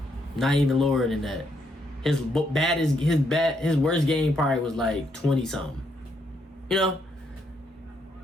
not even lower than that. His worst game probably was like 20 something. You know,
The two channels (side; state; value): both; normal; correlation 0.75